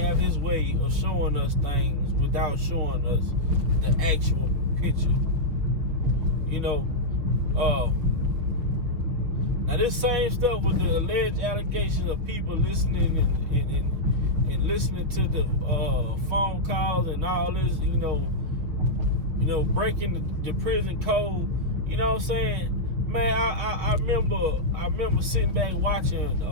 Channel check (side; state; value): left; late; 6.2 ms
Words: his way of showing us things without showing us the actual picture. Now this same stuff with the alleged allegations of people listening and listening to the phone calls and all this, breaking the prison code. You know what I'm saying? Man, I remember sitting back watching